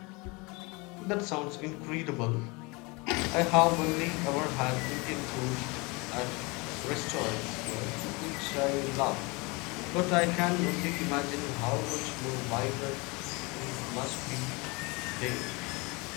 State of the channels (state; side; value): quieter; right; 27.1 dB